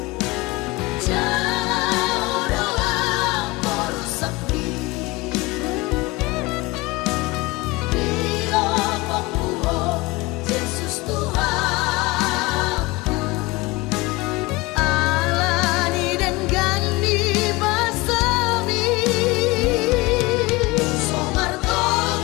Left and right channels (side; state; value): right; quieter; 22.5 dB